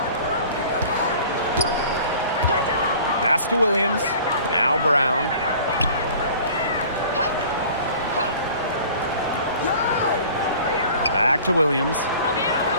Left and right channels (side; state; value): both; inverted; correlation -0.46